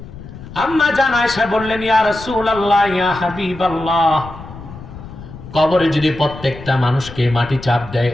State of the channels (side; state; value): left; noise; rumble, 14 dB below the sound